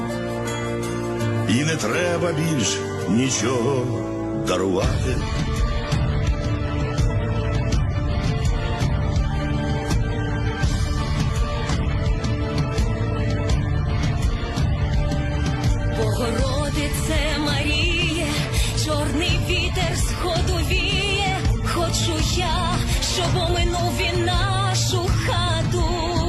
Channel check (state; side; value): identical; both; correlation 1.00